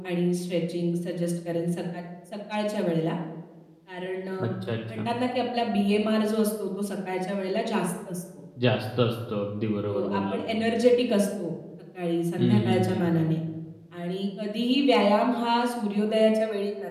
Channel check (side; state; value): both; identical; correlation 1.00